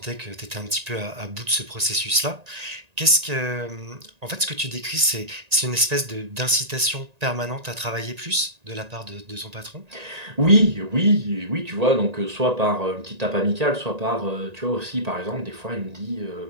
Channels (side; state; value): left; late; 1.9 ms